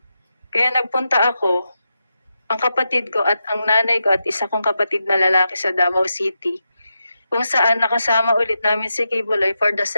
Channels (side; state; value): both; inverted; correlation -0.87